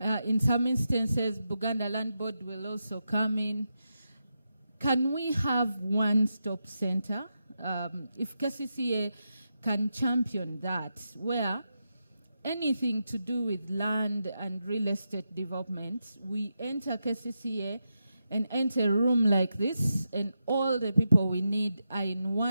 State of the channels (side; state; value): both; inverted; correlation -0.87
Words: In some instances, Buganda Land Board will also come in. Can we have one-stop center? If KCCA can champion that, where anything to do with land and real estate development, we enter KCCA and enter a room like this, and all the people we need are in